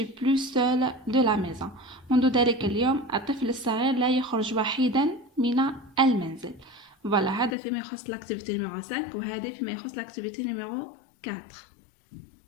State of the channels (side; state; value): right; drops out; at 7.6 s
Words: plus seul de la maison. منذ ذلك اليوم الطفل الصغير لا يخرج وحيدا من المنزل. Voilà, هذا فيما يخص l'activité numéro 5 وهذا فيما يخص l'activité numéro 4.